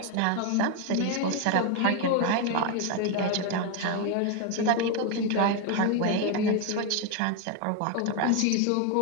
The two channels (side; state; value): both; different; correlation 0.02